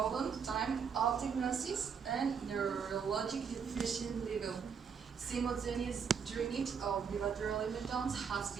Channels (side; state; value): left; quieter; 6.6 dB